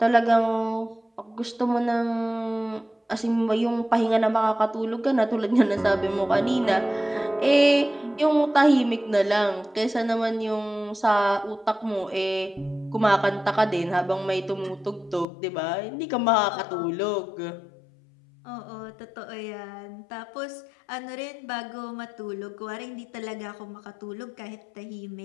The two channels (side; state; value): right; drops out; at 15.2 s